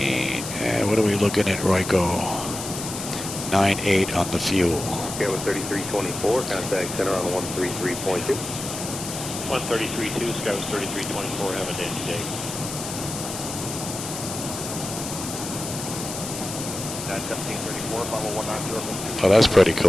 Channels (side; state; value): left; noise; hiss, 7 dB below the sound